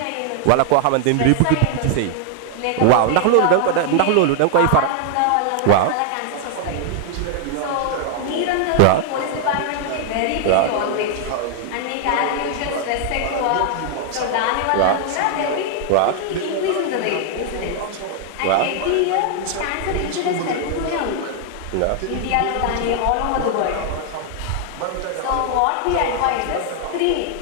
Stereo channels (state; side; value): different; both; correlation 0.00